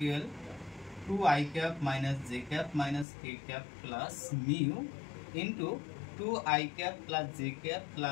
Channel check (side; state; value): right; drops out; at 3.1 s